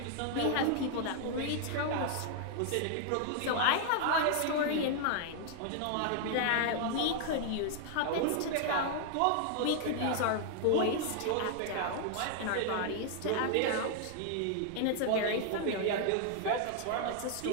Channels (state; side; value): different; both; correlation 0.00